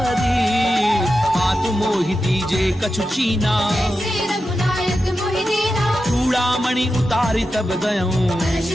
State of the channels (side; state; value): both; normal; correlation 0.90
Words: मातु मोहि दीजे कछु चीना। जैसे रघुनायक मोहि दीना, चूड़ामणि उतारी तब गयऊं। हर्ष